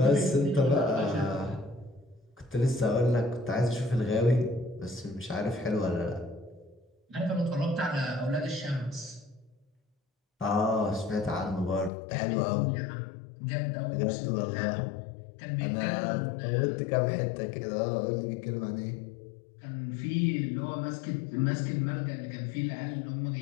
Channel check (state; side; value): drops out; right; at 11.9 s